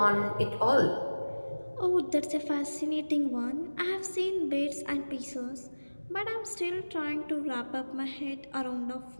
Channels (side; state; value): both; inverted; correlation -1.00